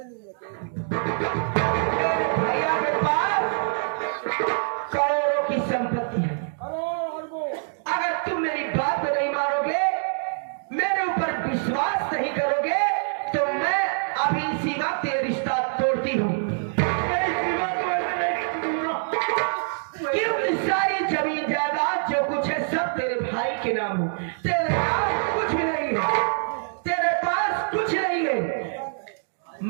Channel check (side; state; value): left; silent; digital silence